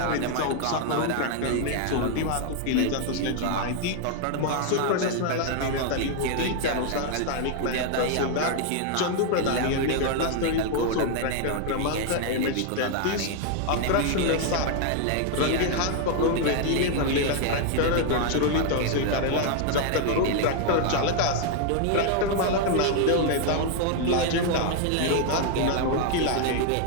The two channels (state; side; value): different; both; correlation 0.00